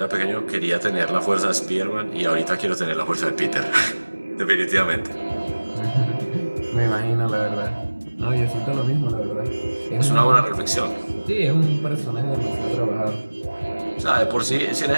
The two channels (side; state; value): both; inverted; correlation -1.00